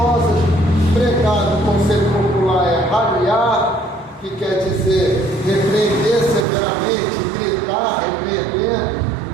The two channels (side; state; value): left; drops out; at 6.5 s